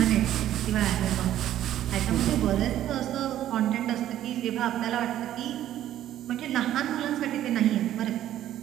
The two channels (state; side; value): quieter; left; 12.2 dB